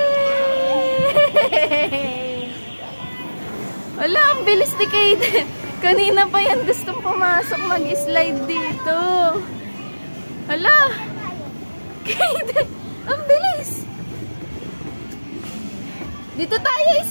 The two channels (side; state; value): both; inverted; correlation -1.00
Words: Wala, ang bilis ni Kaiden. Kanina pa yan gustong pumasok mag-slide dito. Hala! Kaiden! Ang bilis! Dito tayo